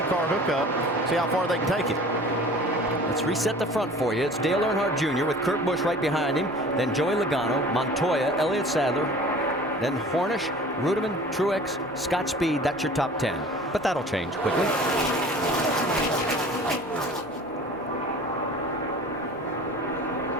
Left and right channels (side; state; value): both; normal; correlation 0.44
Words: hookup. See how far they can take it. Let's reset the front for you. It's Dale Earnhardt Jr. with Kurt Busch right behind him. Then Joey Logano, Montoya, Elliott Sadler. Then Hornish, Ruderman, Truex, Scott Speed. That's your top 10. But that'll change quickly.